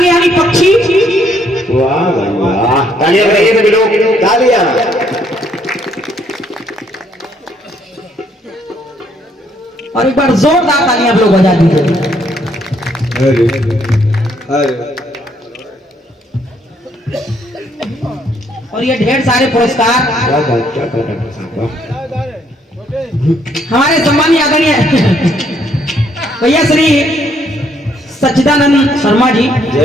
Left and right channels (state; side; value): normal; both; correlation 0.69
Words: यानी पक्षी। वाह वाह, तालियां बजाइए सभी लोग, तालियां। और एक बार जोरदार तालियां आप लोग बजा दीजिए। और ये ढेर सारे पुरस्कार हमारे सम्मानीय आदरणीय भैया श्री सच्चिदानंद शर्मा जी,